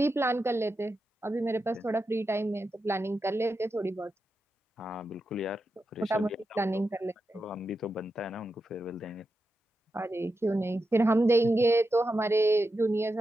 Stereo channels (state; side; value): normal; both; correlation 0.88